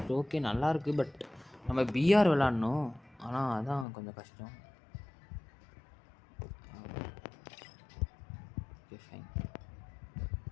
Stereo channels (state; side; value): drops out; right; at 3.9 s